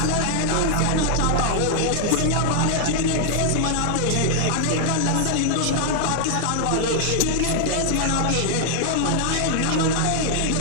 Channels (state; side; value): different; both; correlation -0.01